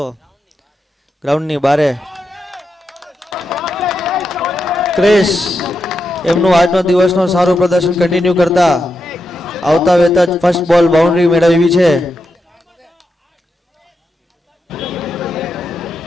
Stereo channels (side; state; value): both; normal; correlation 0.86